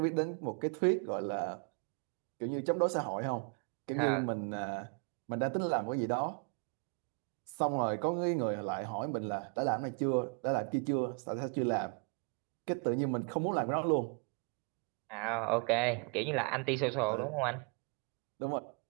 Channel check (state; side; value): quieter; left; 36.0 dB